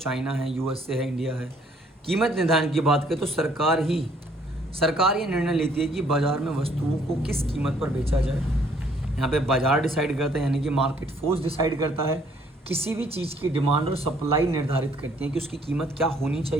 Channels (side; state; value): both; normal; correlation 0.63